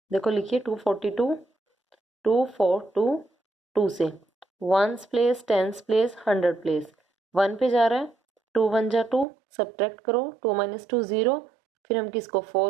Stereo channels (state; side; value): drops out; left; at 9.2 s